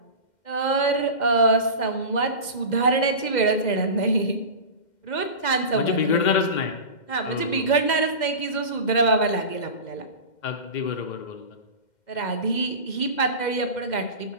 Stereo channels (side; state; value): right; late; 2.1 ms